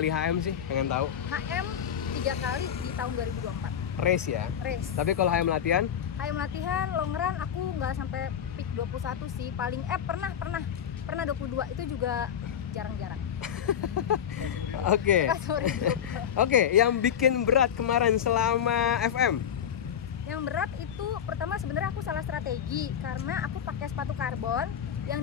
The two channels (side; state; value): right; quieter; 8.9 dB